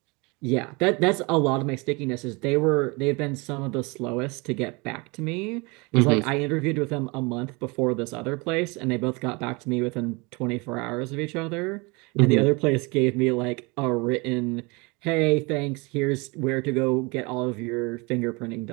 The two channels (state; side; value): quieter; left; 27.6 dB